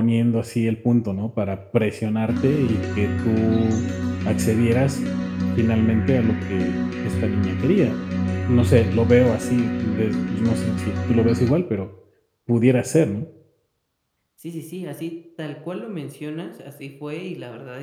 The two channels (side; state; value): both; identical; correlation 1.00